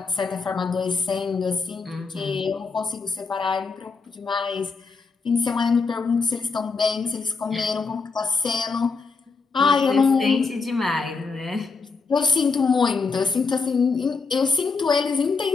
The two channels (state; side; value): quieter; right; 4.6 dB